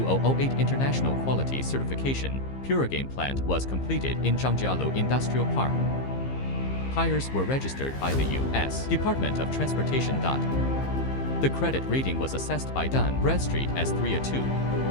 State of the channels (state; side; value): late; right; 15 ms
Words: International Quality Certification. Puregain plant was completed in Zhangjialu Industrial Park. Tires were registered by the U.S. Department of Transportation. The credit rating was assessed by Dun Bradstreet as 3/2.